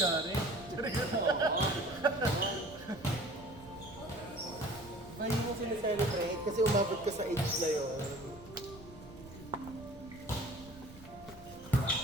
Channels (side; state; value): right; noise; rumble, 19 dB below the sound